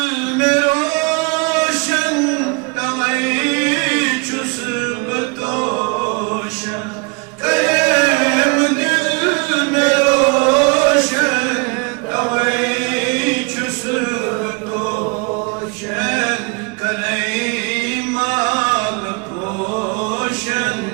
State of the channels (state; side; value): quieter; left; 31.0 dB